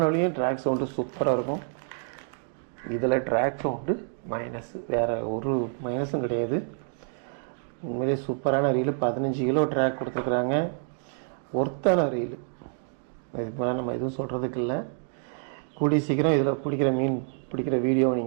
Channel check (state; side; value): silent; left; digital silence